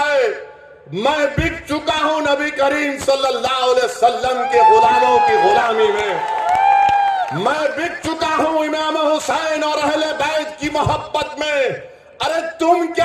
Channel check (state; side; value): identical; both; correlation 1.00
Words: है। मैं बिक चुका हूं नबी करीम सल्लल्लाहु अलैहि वसल्लम के गुलामों की गुलामी में। मैं बिक चुका हूं इमाम हुसैन और अहले बैत की मोहब्बत में। अरे तुम